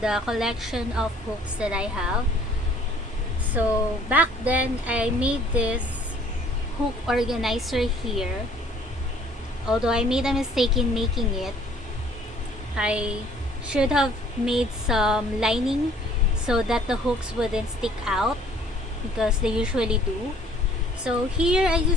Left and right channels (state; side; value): normal; both; correlation 0.57